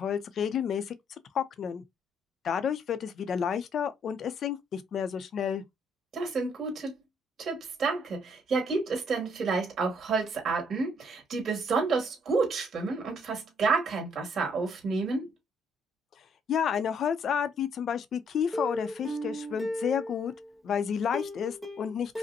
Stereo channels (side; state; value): both; normal; correlation 0.68